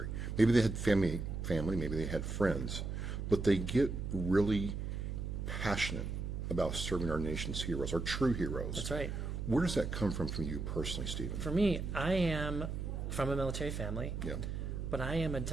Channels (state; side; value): noise; right; hum, 4 dB below the sound